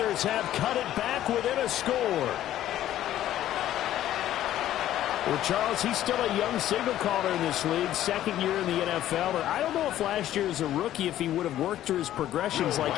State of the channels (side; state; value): right; quieter; 12.7 dB